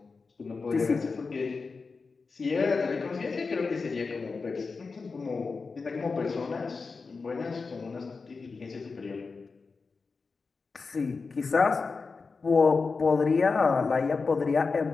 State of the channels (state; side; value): quieter; right; 4.5 dB